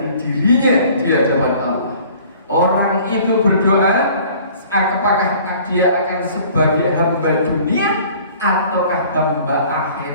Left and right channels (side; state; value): both; inverted; correlation -0.51